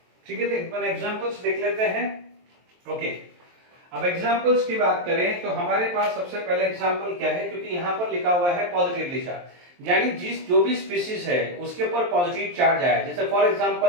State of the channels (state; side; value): late; left; 23 ms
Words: ठीक है, तो एक बार एग्जाम्पल्स देख लेते हैं। ओके, अब एग्जाम्पल्स की बात करें तो हमारे पास सबसे पहले एग्जाम्पल क्या है, क्योंकि यहाँ पर लिखा हुआ है पॉजिटिवली चार्ज, यानी जो भी स्पीशीज है उसके ऊपर पॉजिटिव चार्ज आया, जैसे फॉर